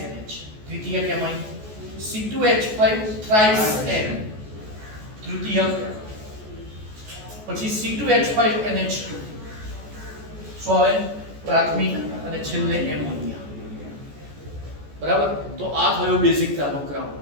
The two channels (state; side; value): late; left; 14 ms